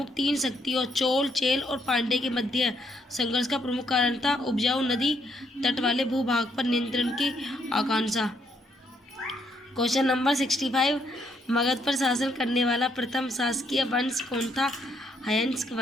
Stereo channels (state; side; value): normal; both; correlation 0.73